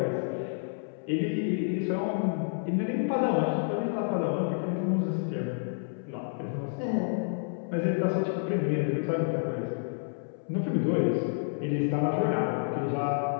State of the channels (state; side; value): silent; right; 58 dB below the other